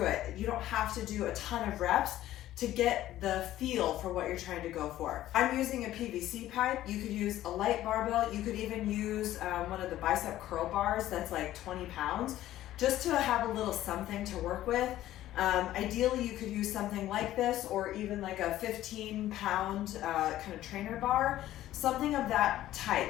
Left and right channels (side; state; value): right; quieter; 13.9 dB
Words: it. You don't have to do a ton of reps to get the feel for what you're trying to go for. I'm using a PVC pipe. You could use a light barbell. You could even use one of the bicep curl bars that's like 20 pounds, just to have a little something to work with. Ideally, you could use something like this, or even like a 15-pound kind of trainer bar, something of that